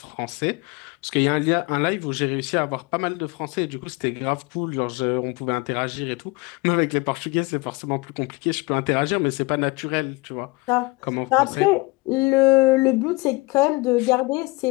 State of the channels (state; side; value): quieter; right; 25.0 dB